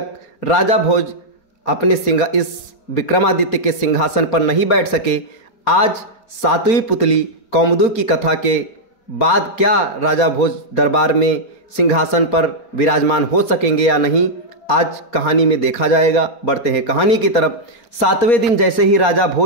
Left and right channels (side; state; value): right; late; 4.3 ms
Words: राजा भोज अपने इस विक्रमादित्य के सिंहासन पर नहीं बैठ सके। आज सातवीं पुतली कौमुदी की कथा के बाद क्या राजा भोज दरबार में सिंहासन पर विराजमान हो सकेंगे या नहीं, आज कहानी में देखा जाएगा। बढ़ते हैं कहानी की तरफ। सातवें दिन जैसे ही राजा